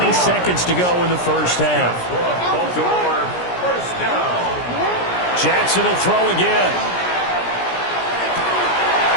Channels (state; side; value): late; right; 17 ms